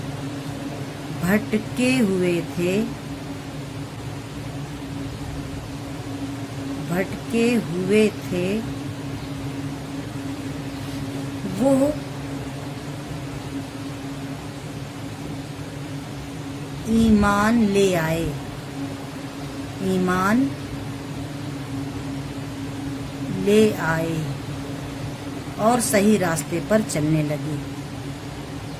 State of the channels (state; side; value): identical; both; correlation 1.00